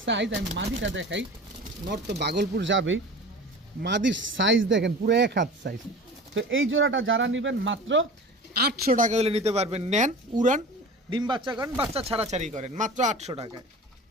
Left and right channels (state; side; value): normal; both; correlation 0.37